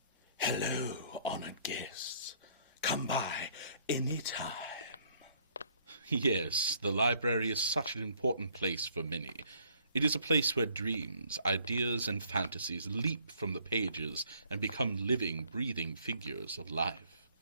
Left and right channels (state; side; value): inverted; both; correlation -0.62